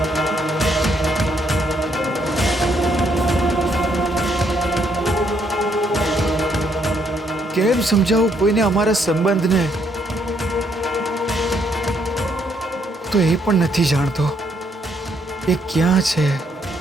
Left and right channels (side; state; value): both; normal; correlation 0.72